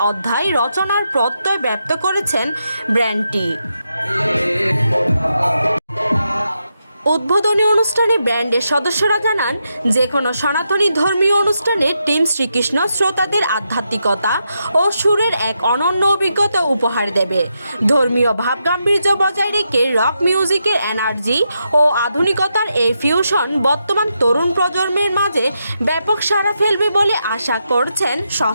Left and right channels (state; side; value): inverted; both; correlation -0.84